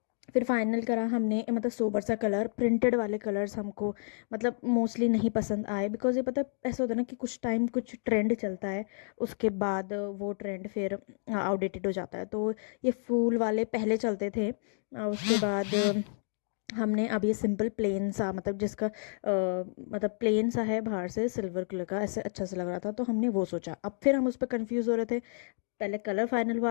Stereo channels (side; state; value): right; silent; digital silence